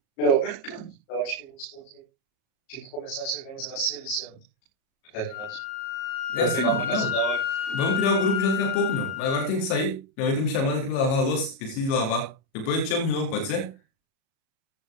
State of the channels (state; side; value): late; right; 37 ms